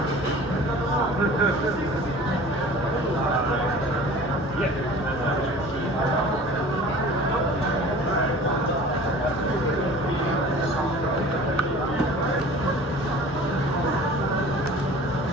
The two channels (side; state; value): both; normal; correlation 0.43